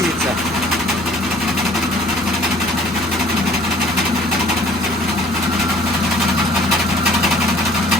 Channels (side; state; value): both; normal; correlation 0.53